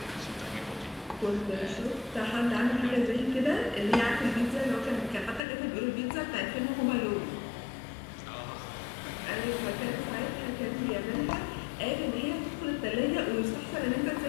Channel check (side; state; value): right; drops out; at 5.4 s